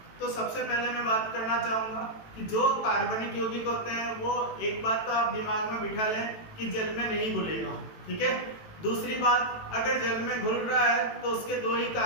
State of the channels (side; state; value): right; late; 18 ms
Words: तो सबसे पहले मैं बात करना चाहूंगा कि जो कार्बनिक यौगिक होते हैं वो एक बात तो आप दिमाग में बिठा लें कि जल में नहीं घुलेगा, ठीक है। दूसरी बात, अगर जल में घुल रहा है तो उसके दो ही